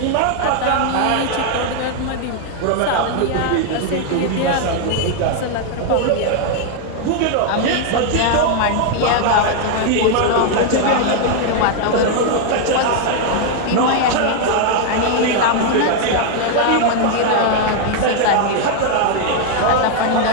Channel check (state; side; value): different; both; correlation 0.00